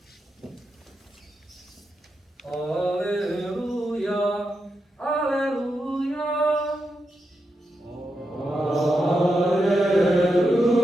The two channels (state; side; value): normal; both; correlation 0.86